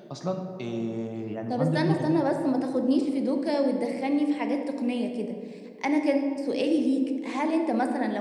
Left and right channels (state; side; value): identical; both; correlation 1.00